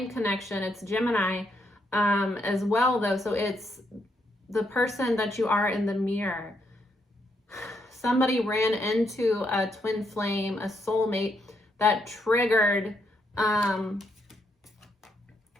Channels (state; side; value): normal; both; correlation 0.77